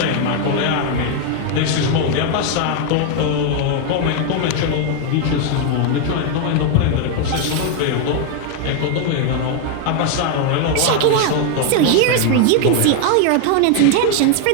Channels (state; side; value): different; both; correlation 0.01